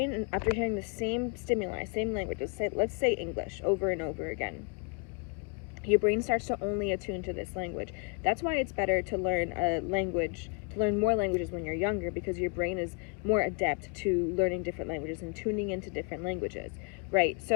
after hearing the same stimuli, same languages, let's say English over and over again, your brain starts to only attune to this language. That's why it's better to learn a language, to learn more languages when you're younger, because your brain is more adept to learning different languages and tuning into different languages, right?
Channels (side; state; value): right; quieter; 36.1 dB